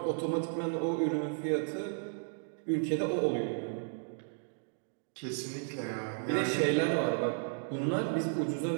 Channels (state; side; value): silent; left; digital silence